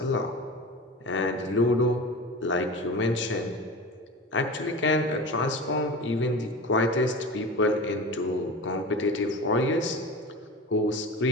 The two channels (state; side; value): normal; both; correlation 0.31